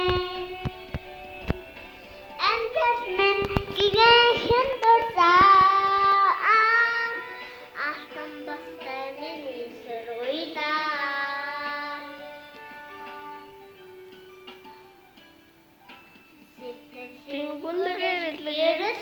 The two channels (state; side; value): identical; both; correlation 1.00